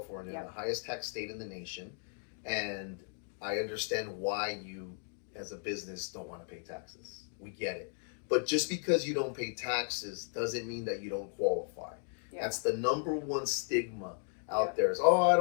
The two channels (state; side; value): silent; right; 54 dB below the other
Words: the highest tax state in the nation, and I understand why you, as a business, don't want to pay taxes. We get it. But just because you don't pay taxes doesn't mean that you don't qualify. That's the number one stigma out there. Is, I